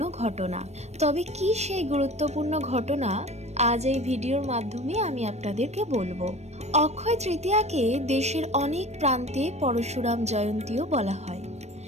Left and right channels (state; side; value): late; left; 0.32 ms